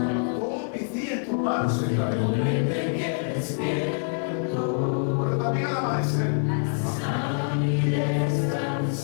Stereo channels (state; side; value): silent; right; 61 dB below the other